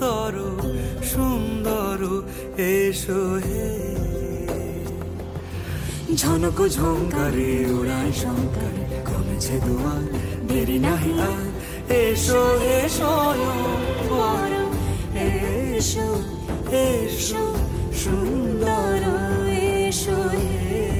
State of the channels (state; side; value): identical; both; correlation 1.00